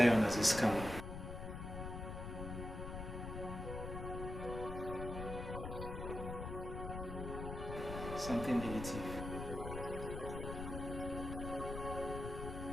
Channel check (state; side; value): noise; left; rumble, 6 dB below the sound